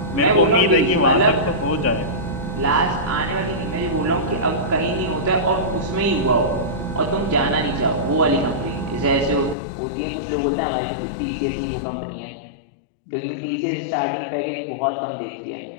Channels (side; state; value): right; drops out; at 9.6 s